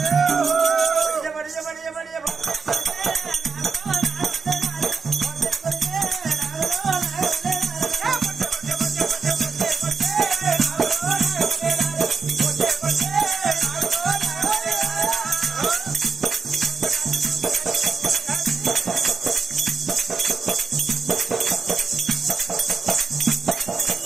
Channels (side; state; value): left; quieter; 4.9 dB